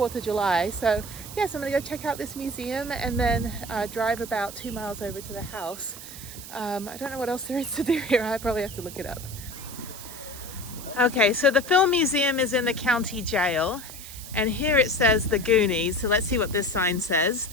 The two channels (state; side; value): noise; right; hiss, 13 dB below the sound